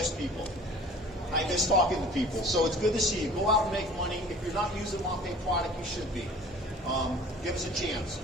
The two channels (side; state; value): both; normal; correlation 0.46